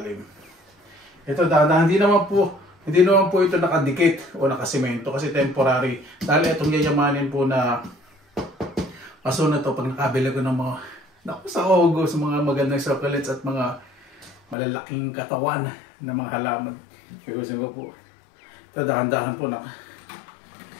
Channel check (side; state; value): right; drops out; at 14.6 s